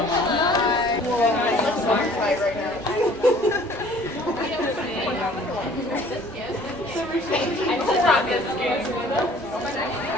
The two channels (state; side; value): noise; left; rumble, 28 dB below the sound